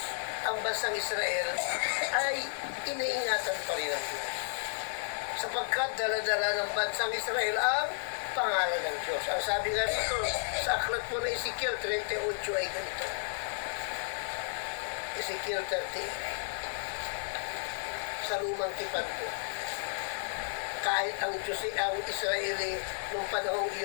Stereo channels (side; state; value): right; silent; digital silence